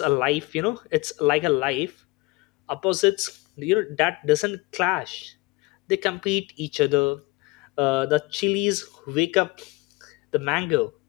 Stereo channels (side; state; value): right; quieter; 23.7 dB